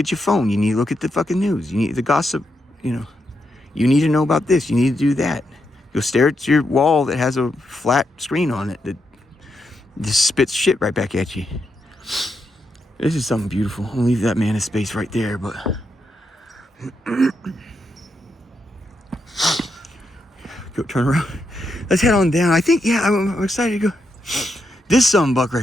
your phone. You need to look at the fucking news. You need the gossip, You need to know about this. You need to do that. You'll stare at your wall that has a flat screen on it that just spits shit right back at you. This is something beautiful. I'll leave that man in space right there, but go turn around. Let's head on down. I think, yeah, I'm excited to go. This buck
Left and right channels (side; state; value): both; normal; correlation 0.83